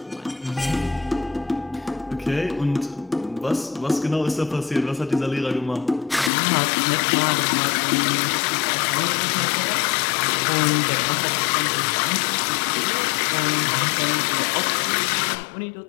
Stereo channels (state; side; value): drops out; right; at 6.3 s